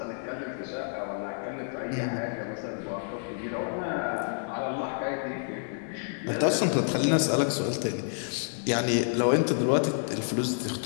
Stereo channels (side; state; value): right; silent; digital silence